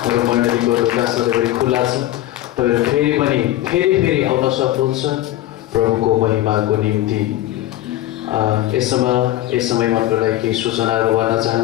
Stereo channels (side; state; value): right; quieter; 14.6 dB